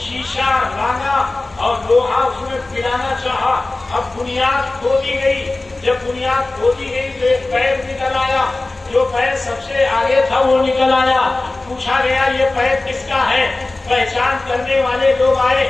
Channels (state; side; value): quieter; right; 3.0 dB